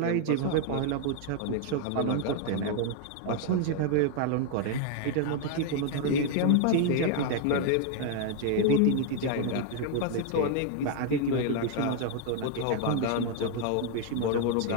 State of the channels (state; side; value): different; both; correlation 0.00